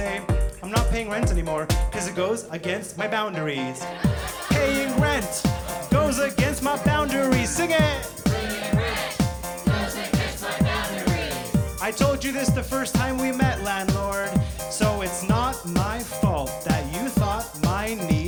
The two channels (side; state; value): both; identical; correlation 1.00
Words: I'm not paying rent anymore because it goes against my boundaries. Paying rent goes against my boundaries. Sing it! Paying rent goes against my boundaries. I told you this the first time we met, landlord, so it's not my fault that you thought my